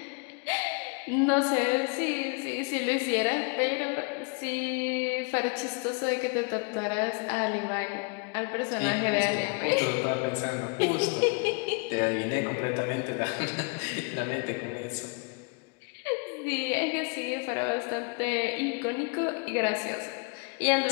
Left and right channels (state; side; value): quieter; right; 34.1 dB